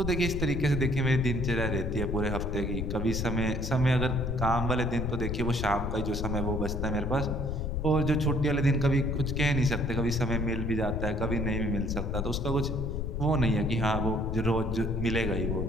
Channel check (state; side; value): noise; left; rumble, 2 dB below the sound